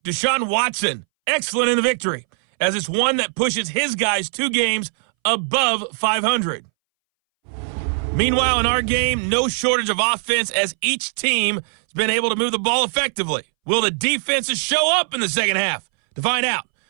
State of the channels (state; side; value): silent; left; 64 dB below the other